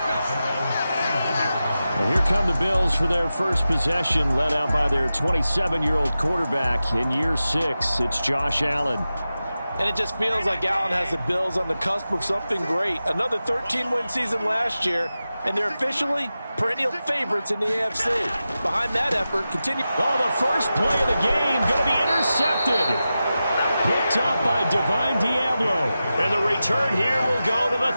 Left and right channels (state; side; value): inverted; both; correlation -0.93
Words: And here come the Bills for their first possession, led out by their 27-year-old quarterback in year 6. It's Josh Allen. And it just feels like Allen has the Bills on the cusp of something great. Another 13-win season last year, and they're officially perennial favorites in the AFC. Behind that effort, continue. Oh, the first play of the game going to be intercepted. Picked up by Divine Diablo. And the return here will go to the